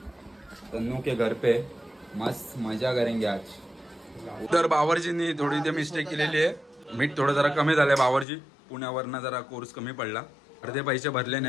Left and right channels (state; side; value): drops out; right; at 8.2 s